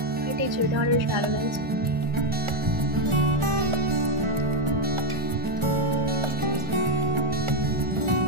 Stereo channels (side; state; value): left; late; 1.4 ms